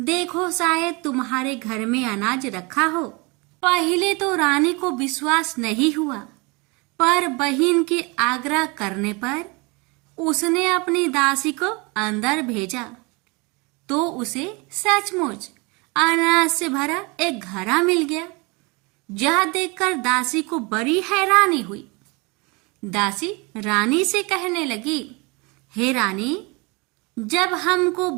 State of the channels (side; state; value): left; quieter; 27.9 dB